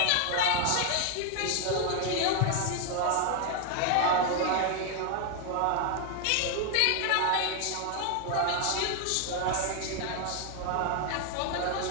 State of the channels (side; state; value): both; different; correlation 0.01